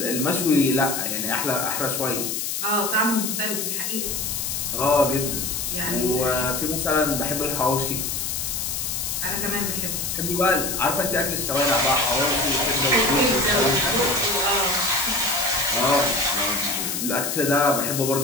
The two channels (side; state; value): left; noise; hiss, 2 dB below the sound